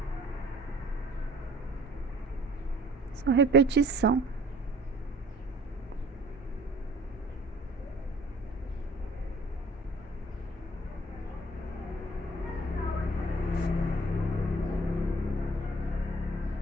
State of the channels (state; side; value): normal; both; correlation 0.53